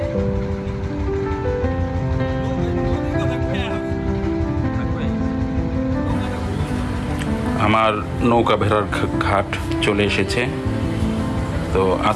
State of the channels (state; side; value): identical; both; correlation 1.00